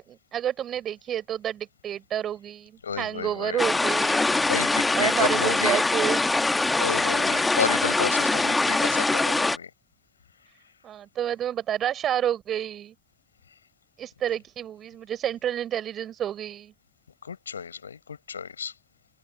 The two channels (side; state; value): both; normal; correlation 0.68